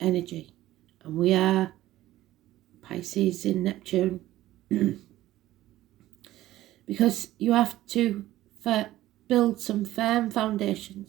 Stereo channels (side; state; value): left; quieter; 15.1 dB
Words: energy. And we are Pisces in Neptune. Because you have to build some firm